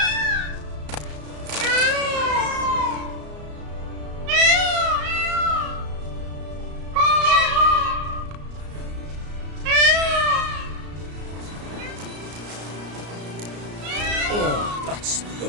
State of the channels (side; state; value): left; late; 34 ms